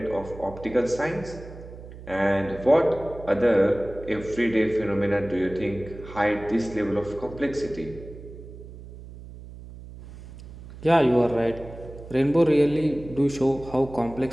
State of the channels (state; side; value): noise; right; hum, 15 dB below the sound